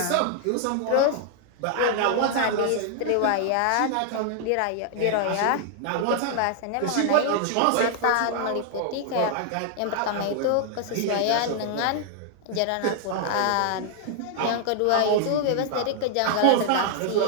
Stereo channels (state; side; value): different; both; correlation 0.00